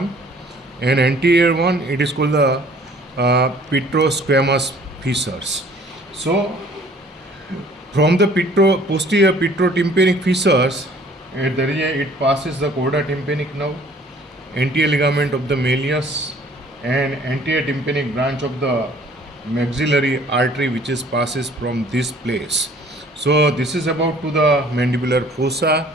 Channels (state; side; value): normal; both; correlation 0.55